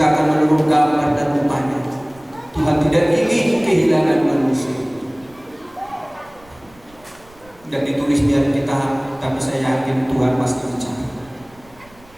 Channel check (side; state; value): right; noise; rumble, 27 dB below the sound